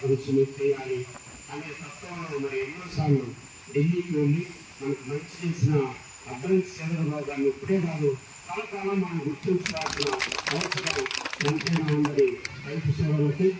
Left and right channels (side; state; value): both; identical; correlation 1.00